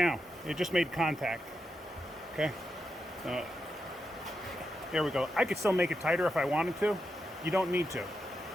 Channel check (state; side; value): normal; both; correlation 0.86